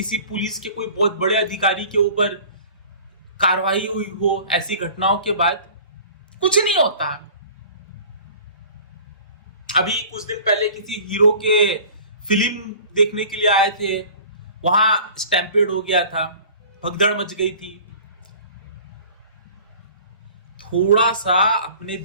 पुलिस के कोई बहुत बड़े अधिकारी के ऊपर कार्रवाई हुई हो? ऐसी घटनाओं के बाद कुछ नहीं होता। अभी कुछ दिन पहले किसी हीरो के फिल्म देखने के लिए आए थे, वहां स्टैम्पेड हो गया था, भगदड़ मच गई थी। थोड़ा सा अपने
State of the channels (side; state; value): both; inverted; correlation -0.45